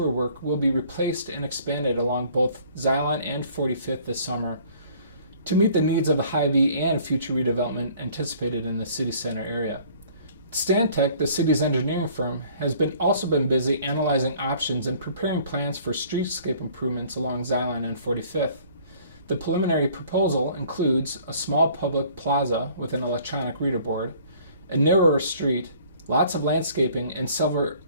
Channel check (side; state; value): both; inverted; correlation -0.55